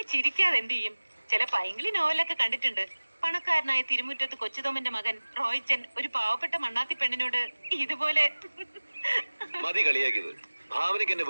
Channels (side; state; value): both; inverted; correlation -1.00